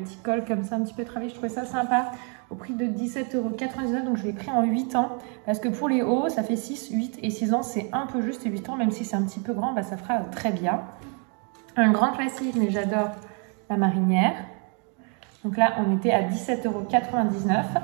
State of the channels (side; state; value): left; quieter; 38.3 dB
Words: col comme ça un petit peu travaillé, je trouvais ça sympa, au prix de 17,99 €. Donc je l'ai pris en 8 ans, parce que pour les hauts ça fait 6, 8 et 6 ans, c'est un peu juste. Et 8 ans, même si c'est un petit peu grand, bah, ça fera très bien. Un grand classique, mais j'adore la marinière. Donc là on était à 17,99